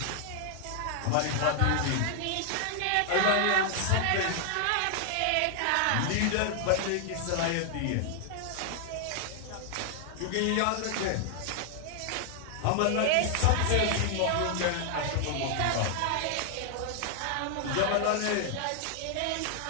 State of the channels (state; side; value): different; both; correlation 0.00